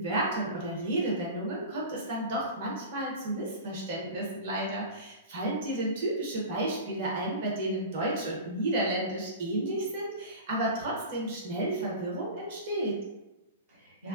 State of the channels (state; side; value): inverted; both; correlation -0.31